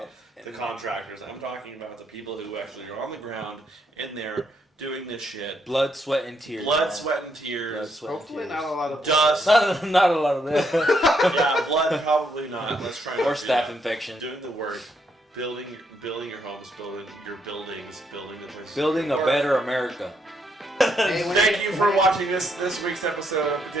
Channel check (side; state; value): both; normal; correlation 0.75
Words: the contractors. I'm talking about the people who actually are on the ground in there doing this shit. Blood, sweat, and tears. Sweat, and tears. Blood, sweat, Hopefully and tears. Not a lot of dust. Not a lot of that. Yeah, blood probably not. Let's try. Or staph infection. Doing the work, building your homes, building your buildings, building the places. Building a better America. Thank you for watching this week's episode of